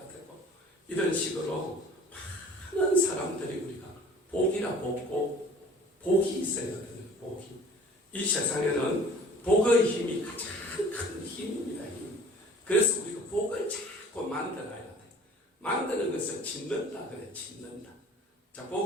되고 이런 식으로 많은 사람들이 우리가 복이라 복이 있어야 되는 복이. 이 세상에는 복의 힘이 가장 큰 힘입니다. 힘. 그래서 우리가 복을 자꾸 만들어야 돼. 만드는 것을 짓는다 그래. 짓는다. 자,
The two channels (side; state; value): both; normal; correlation 0.48